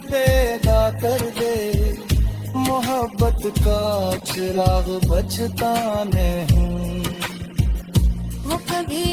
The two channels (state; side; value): identical; both; correlation 1.00